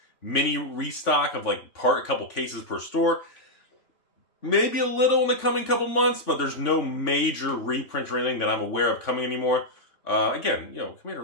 mini restock of like a couple cases per store. Maybe a little in the coming couple months, but there's no major reprint or anything that I'm aware of coming anymore. Again, you know, Commander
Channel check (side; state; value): right; late; 3.5 ms